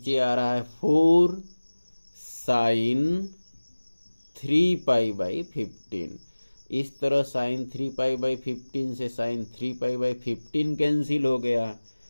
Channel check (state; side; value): inverted; both; correlation -1.00